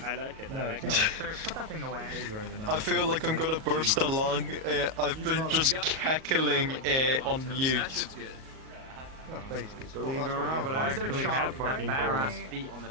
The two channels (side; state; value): left; late; 38 ms